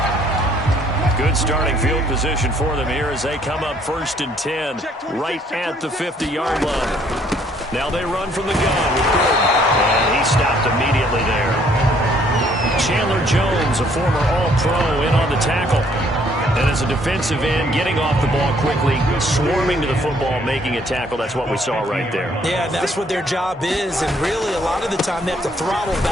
Good starting field position for them here as they come up 1st and 10 right at the 50-yard line. Now they run from the gun with Gordon. And he stopped immediately there. Chandler Jones, a former All-Pro, in on the tackle. And as a defensive end, getting off the ball quickly, swarming to the football, making a tackle. That's what we saw right there. Yeah, that's what their job is. And really, a lot of the time, they have to throttle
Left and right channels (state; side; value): normal; both; correlation 0.64